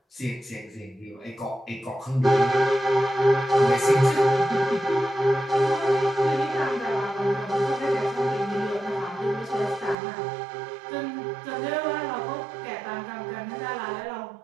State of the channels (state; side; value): drops out; left; at 10.0 s